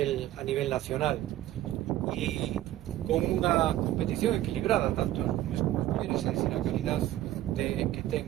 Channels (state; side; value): quieter; left; 14.0 dB